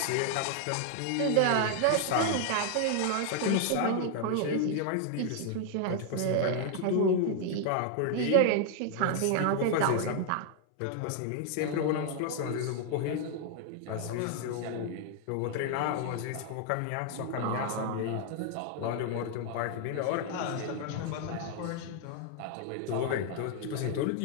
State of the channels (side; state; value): both; different; correlation 0.00